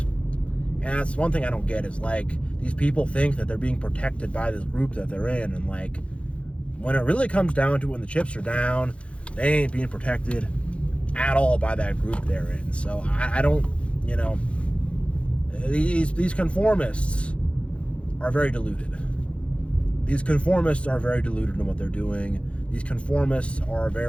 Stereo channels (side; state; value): right; late; 0.061 ms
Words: And that's one thing I don't get is these people think that they're being protected by this group that they're in. And when it really comes down to it, when the chips are down, they ain't being protected at all by that group they're in. So I don't, these conformists are very deluded. These conformists are very deluded in what they're doing. These conformists are